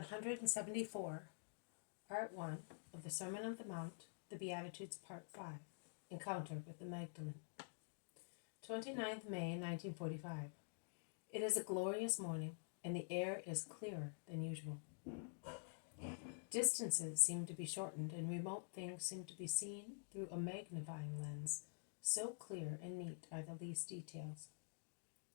Part 1 of the Sermon on the Mount, the Beatitudes, Part 5, Encounter with the Magdalene. 29th May, 1945. It is a glorious morning, and the air is clearer than usual. Distances seem to be shortened, and remote things seem to be seen through a magnifying lens. So clear and neat are the least details.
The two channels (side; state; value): right; silent; digital silence